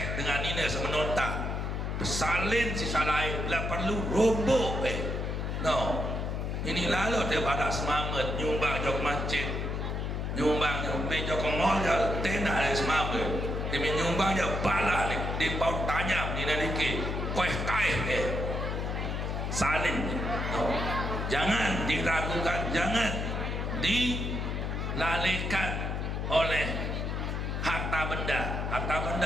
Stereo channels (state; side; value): noise; left; hum, 2 dB below the sound